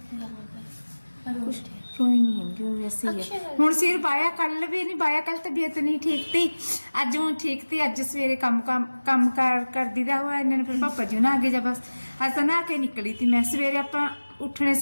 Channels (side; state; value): both; inverted; correlation -1.00